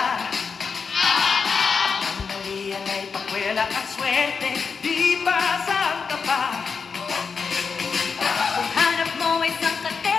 Ang malian ay pakwela at swerte, di ba saan ka pa? Kung hanap mo ay isang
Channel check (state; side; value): quieter; right; 5.5 dB